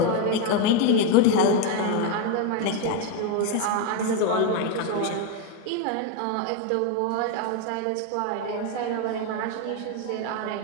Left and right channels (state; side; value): different; both; correlation 0.02